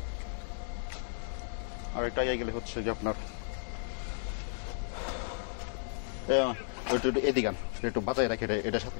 হচ্ছে যে আপনার এদিকে একটু বাঁচাই রাখে, এটার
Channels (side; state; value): right; silent; digital silence